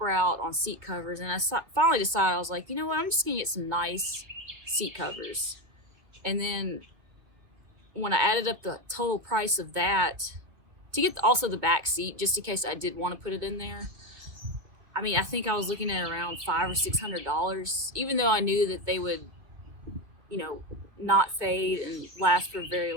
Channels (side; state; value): left; late; 1.9 ms